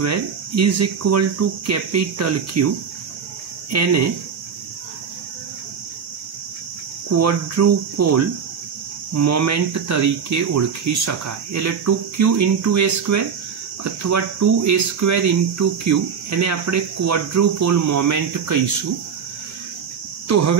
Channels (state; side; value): quieter; left; 6.7 dB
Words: is equal to capital Q, एने क्वॉड्रुपोल मोमेंट तरीके ओळखी शकाय। एटले 2q इंटू a² अथवा 2a² इंटू q एने आपणे क्वॉड्रुपोल मोमेंट कहीशुं। तो